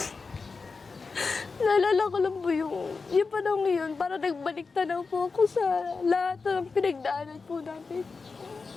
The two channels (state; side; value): quieter; right; 4.5 dB